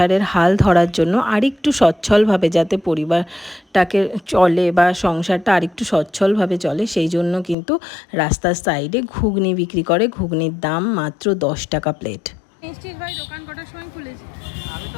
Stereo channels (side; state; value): right; drops out; at 7.6 s